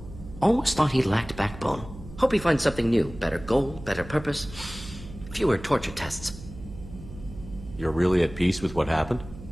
Almost thought he lacked backbone. Hope he finds something new. Better goal, better purpose. Fewer torture tests. You're really at peace with what happened?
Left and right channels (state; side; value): noise; right; hum, 14 dB below the sound